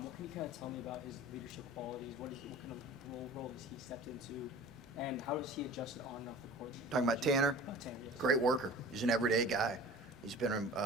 can you kind of tell me about his leadership qualities? What kind of role has he stepped into? And how does he adjust it on and off the court? Talking about Tanner? Tanner, yes. Great worker. He's an everyday guy. He's been,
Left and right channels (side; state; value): right; noise; rumble, 27 dB below the sound